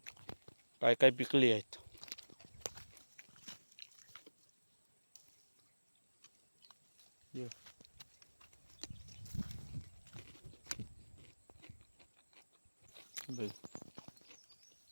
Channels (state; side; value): inverted; both; correlation -1.00